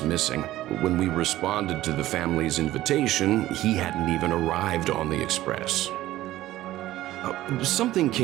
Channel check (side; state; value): left; quieter; 15.3 dB